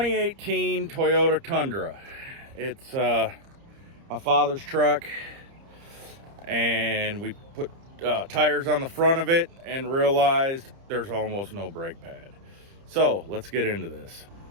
Toyota Tundra. It's my father's truck, and we put tires on the front of it and realized there's almost no brake pad. So let's get into this.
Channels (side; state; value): left; late; 30 ms